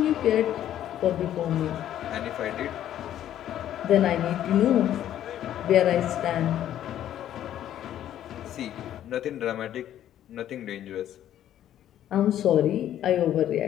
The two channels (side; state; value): right; quieter; 11.5 dB